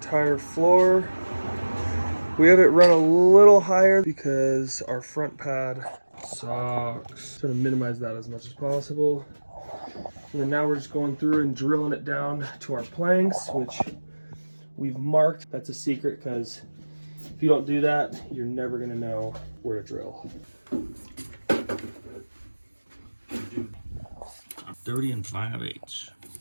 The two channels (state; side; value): inverted; both; correlation -1.00